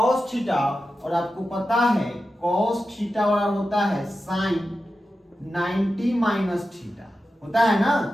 थीटा, और आपको पता है कॉस थीटा बराबर होता है साइन 90 माइनस थीटा, होता है ना,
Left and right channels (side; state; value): both; normal; correlation 0.91